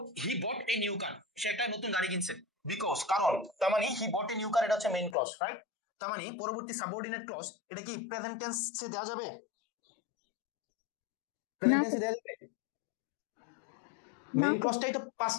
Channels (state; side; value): drops out; right; at 5.2 s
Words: হি বট এ নিউ কার, সে একটা নতুন গাড়ি কিনছে, বিকজ, কারণ, তার মানে হি বট এ নিউ কার, এটা হচ্ছে মেইন ক্লজ, রাইট? তার মানে পরবর্তী সাবঅর্ডিনেট ক্লজ এটা কি প্রেজেন্ট টেন্সে দেওয়া যাবে? প্রেজেন্ট টেন্সে দেওয়া যাবে? মেইন ক্লজটাই তো